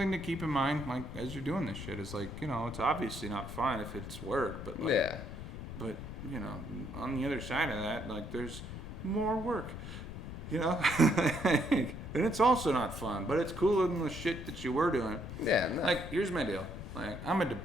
to keep in mind, like, as you're doing this shit. It's like, you know, it's obviously not fun if it's work, but like, Yeah. but, you know, on the other side of that, like, there's more work, you know? And it's also not fun, but it's cooler than the shit that you were doing. Yeah. No. Like, here's my deal. Like, I'm a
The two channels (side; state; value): left; noise; rumble, 9 dB below the sound